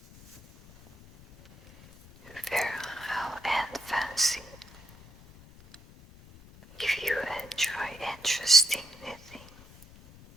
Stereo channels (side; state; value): left; noise; rumble, 22 dB below the sound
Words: Virile and fancy. If you enjoy interesting knitting,